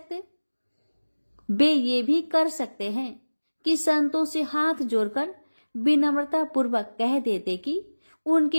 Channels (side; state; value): both; inverted; correlation -1.00